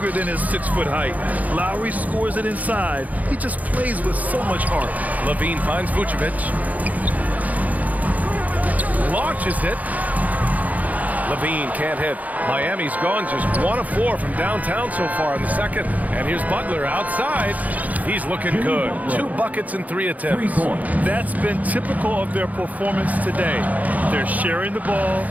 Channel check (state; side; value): late; left; 0.076 ms